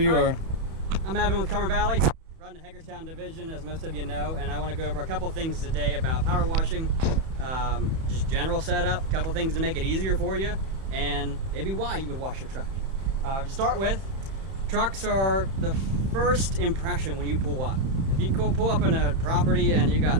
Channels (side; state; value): left; late; 31 ms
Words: are. I'm Evan with Cumber Valley, run the Hagerstown division, as most of you know, and I want to go over a couple things today about power washing, just general setup, a couple things to make it easier for you, and maybe why you would wash your truck. To start with, trucks are the first impression when you pull up. If you pull up in a property and you got